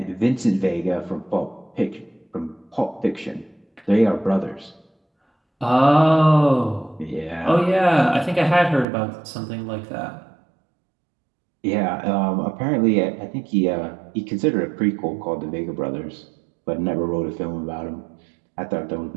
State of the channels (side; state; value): left; drops out; at 8.8 s